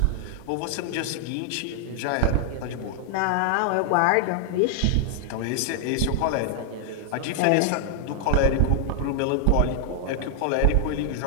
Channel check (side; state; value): both; different; correlation 0.00